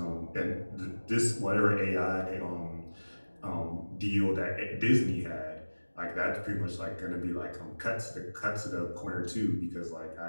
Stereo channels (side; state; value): both; inverted; correlation -1.00